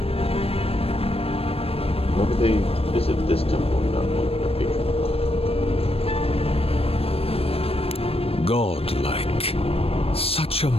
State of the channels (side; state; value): right; late; 0.28 ms